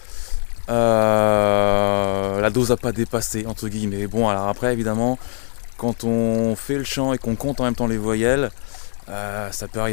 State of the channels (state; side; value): silent; right; 65 dB below the other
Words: La dose à pas dépasser entre guillemets. Bon alors après évidemment quand on fait le chant et qu'on compte en même temps les voyelles, ça peut